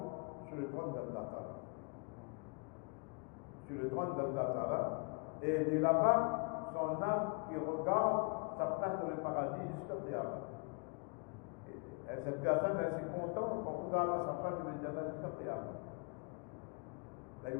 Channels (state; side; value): quieter; right; 35.1 dB